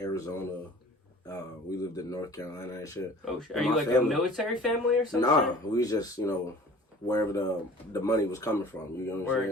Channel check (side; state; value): both; normal; correlation 0.46